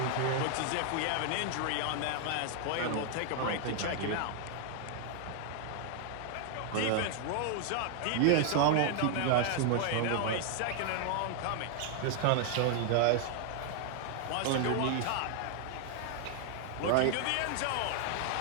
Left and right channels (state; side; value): different; both; correlation 0.00